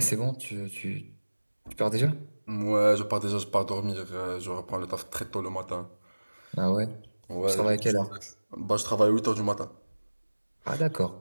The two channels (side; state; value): both; inverted; correlation -1.00